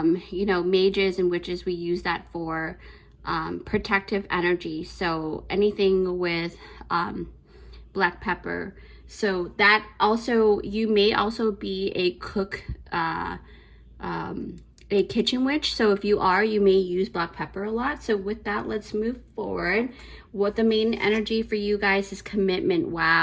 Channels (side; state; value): both; identical; correlation 1.00